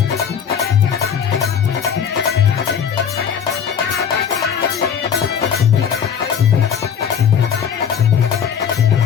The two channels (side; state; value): right; quieter; 7.7 dB